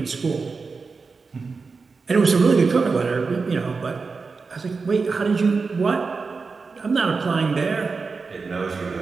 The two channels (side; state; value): left; quieter; 4.5 dB